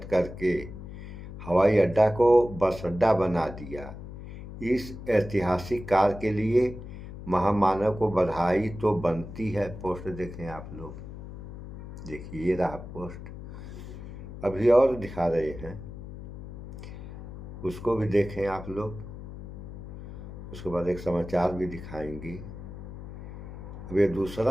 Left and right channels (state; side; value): noise; left; hum, 12 dB below the sound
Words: करके हवाई अड्डा को बस अड्डा बना दिया। इस ऐतिहासिक कार्य के लिए महामानव को बधाई तो बनती है। पोस्ट देखें आप लोग, देखिए ये रहा पोस्ट। अभी और दिखा रहे हैं, उसको भी देखें आप लोग। उसके बाद एक समाचार भी दिखाएंगे। अब ये